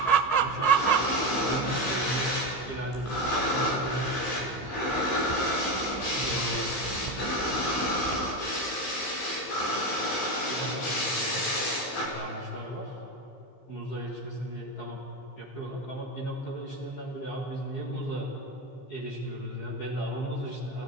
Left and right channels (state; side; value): late; right; 15 ms